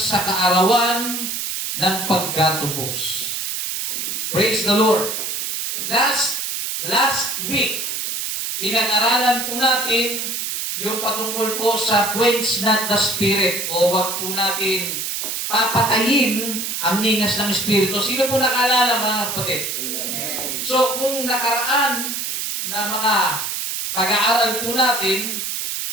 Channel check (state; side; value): noise; right; hiss, 3 dB below the sound